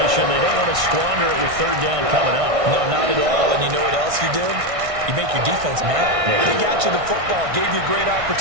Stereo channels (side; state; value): left; late; 1.6 ms